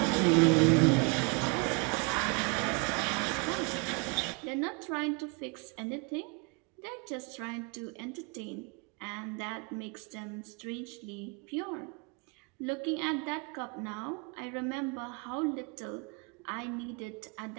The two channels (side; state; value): left; quieter; 30.4 dB